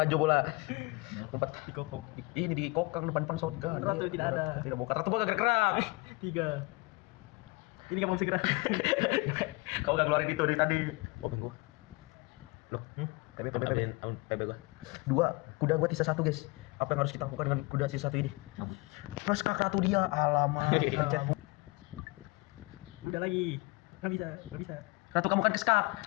bola. Umpat. Di kokok. Ini di kokang depan shotgun. Ratu tidak ada. Tidak buka. Ratu gua gak gerak. 3. Ini kamu segera. Kau gak keluarin itu dari tadi. Oh, bingung. Loh, PB. PB gua. 2, kuda gua sisa 1 guys. Apa yang harus kita lakukan dengan kuda sisa 1 ini? Plus kak ratu dia. Alamak. Pencet. Udah lagi. Nggak bisa. Ratu kamu kan keskak.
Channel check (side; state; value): right; quieter; 25.2 dB